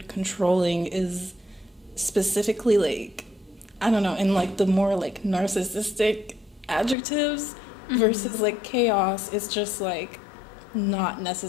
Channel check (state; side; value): drops out; right; at 7.0 s